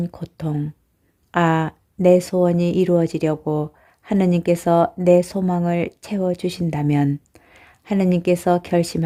고통. 아, 내 소원이 이루어지려고 하느님께서 내 소망을 채워주신다면 하느님께서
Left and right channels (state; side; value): identical; both; correlation 1.00